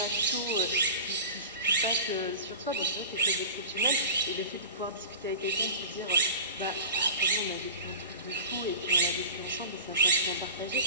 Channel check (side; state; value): both; inverted; correlation -0.36